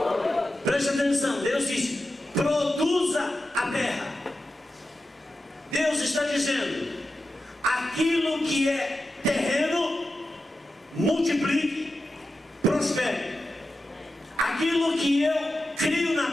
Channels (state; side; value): normal; both; correlation 0.91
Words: preste atenção, Deus diz: produza a terra. Deus está dizendo: aquilo que é terreno, multiplique, prospere. Aquilo que eu crio na